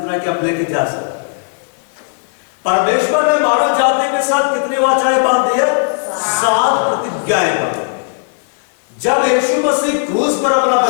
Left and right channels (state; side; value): silent; right; digital silence